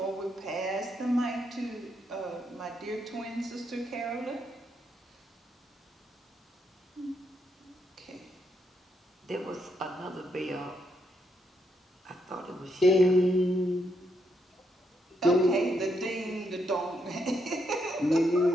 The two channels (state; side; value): normal; both; correlation 0.78